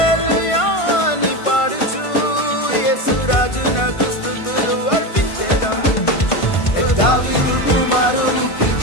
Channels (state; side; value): late; right; 1.5 ms